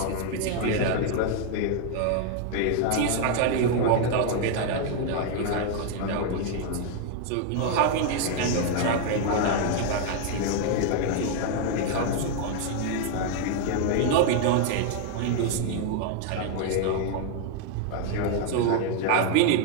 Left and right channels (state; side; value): different; both; correlation 0.00